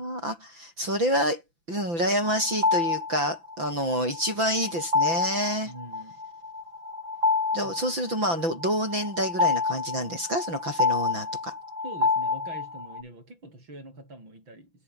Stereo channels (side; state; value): left; late; 6.0 ms